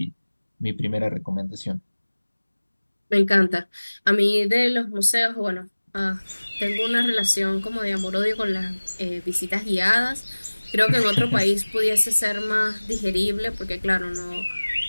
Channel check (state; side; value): inverted; both; correlation -1.00